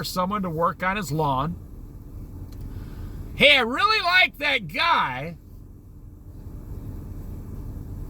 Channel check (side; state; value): both; identical; correlation 1.00